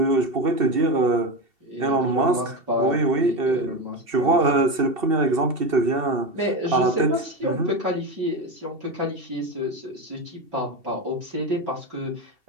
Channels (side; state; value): left; late; 2.7 ms